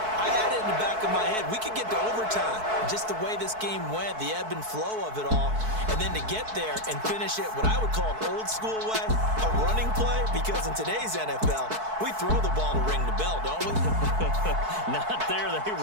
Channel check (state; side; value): late; left; 4.6 ms